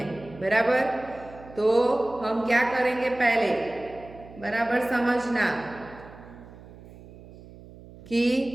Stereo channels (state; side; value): noise; right; hum, 19 dB below the sound